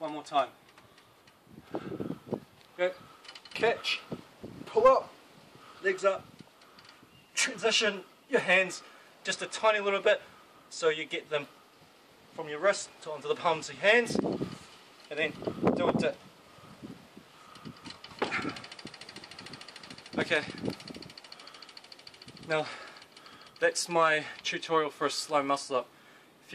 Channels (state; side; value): identical; both; correlation 1.00